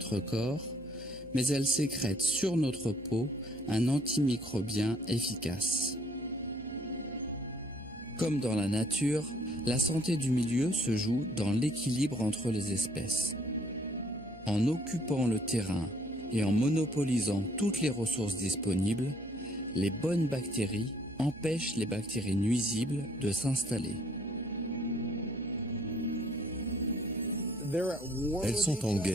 corps, mais elle sécrète sur notre peau un antimicrobien efficace. Comme dans la nature, la santé du milieu se joue dans l'équilibre entre les espèces. En occupant le terrain et en monopolisant toutes les ressources disponibles, les bonnes bactéries empêchent les bactéries nuisibles de s'installer. Elles sont en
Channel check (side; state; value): right; noise; hum, 19 dB below the sound